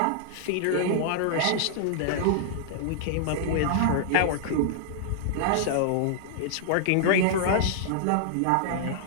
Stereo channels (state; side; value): different; both; correlation -0.01